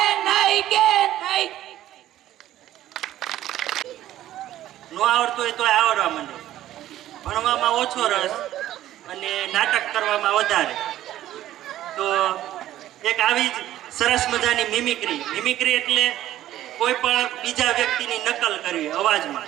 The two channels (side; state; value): left; quieter; 13.3 dB